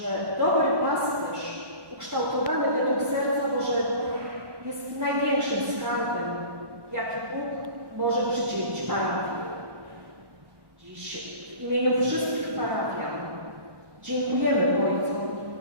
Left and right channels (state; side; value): late; left; 1.1 ms